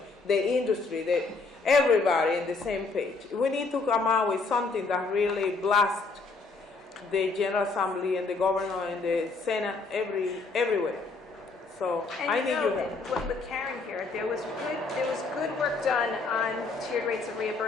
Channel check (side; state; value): right; quieter; 3.9 dB